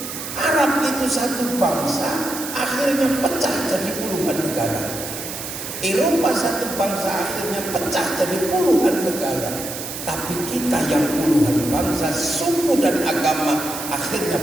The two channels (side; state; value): right; noise; hiss, 8 dB below the sound